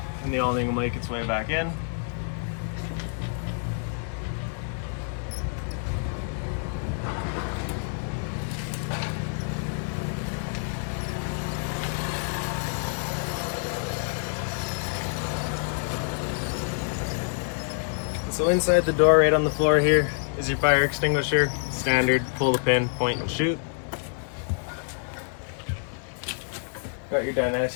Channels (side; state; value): right; silent; 60 dB below the other